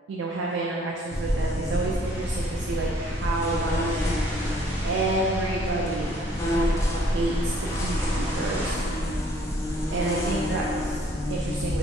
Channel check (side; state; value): both; normal; correlation 0.61